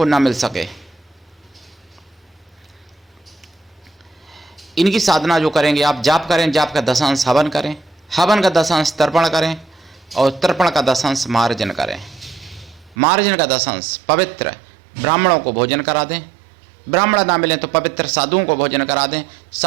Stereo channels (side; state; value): left; drops out; at 13.0 s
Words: ना मिल सके। इनकी साधना जो करेंगे आप, जाप करें, जाप का 10 हवन करें, हवन का 10 तर्पण करें, और तर्पण का 10 मार्जन करें। मार्जन का 10 पवित्र ब्राह्मणों को भोजन करा दें, ब्राह्मण ना मिलें तो पवित्र साधुओं को भोजन करा दें।